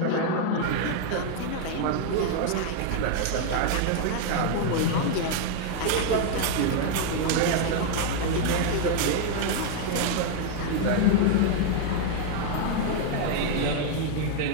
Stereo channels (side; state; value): both; different; correlation 0.00